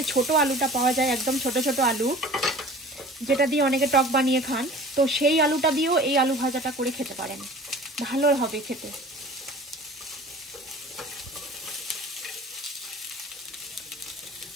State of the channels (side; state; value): both; normal; correlation 0.43